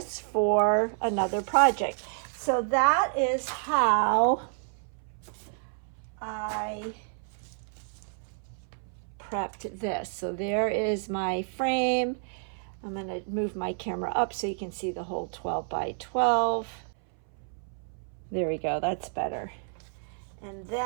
for another project. So that is how I prepped this. So there is my frame. I'm going to move my camera up so you can see the whole 12 by 12. There we go, that's better. And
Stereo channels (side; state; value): left; silent; 58 dB below the other